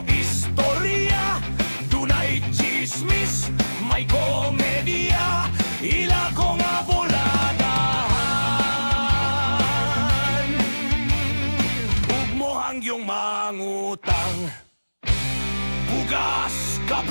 istorya, dunay chismis, may komedya, ila ko nga buladahan. Ug mo hangyong mangutang, bugas,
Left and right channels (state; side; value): inverted; both; correlation -1.00